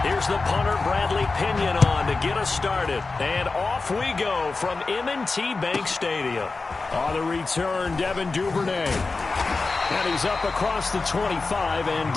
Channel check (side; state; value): right; quieter; 3.9 dB